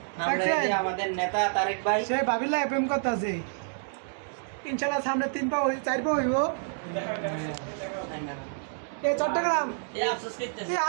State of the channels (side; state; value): left; silent; digital silence